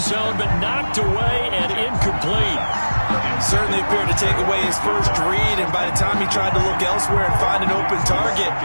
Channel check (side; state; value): both; inverted; correlation -1.00